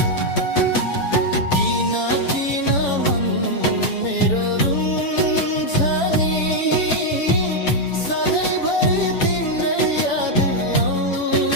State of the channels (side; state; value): right; late; 7.1 ms